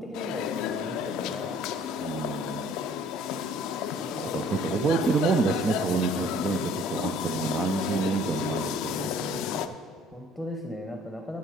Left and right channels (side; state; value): both; normal; correlation 0.54